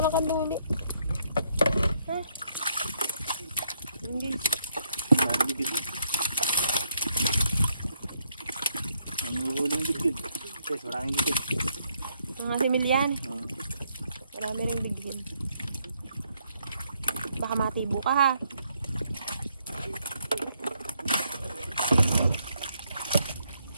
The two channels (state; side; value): inverted; both; correlation -0.74